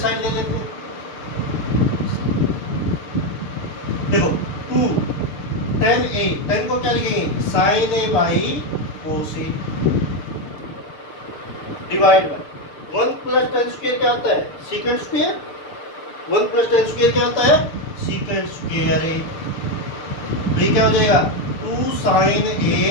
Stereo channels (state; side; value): late; right; 6.7 ms